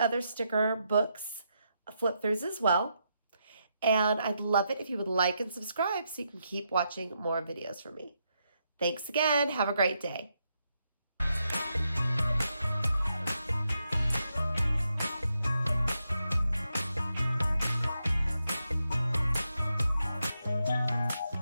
sticker books flip throughs as well. And I'd love it if you would like and subscribe so you can keep watching more videos from me. Thanks again. Have a great day.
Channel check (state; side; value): inverted; both; correlation -0.82